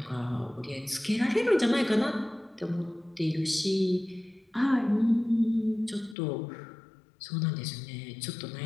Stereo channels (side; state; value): right; drops out; at 6.2 s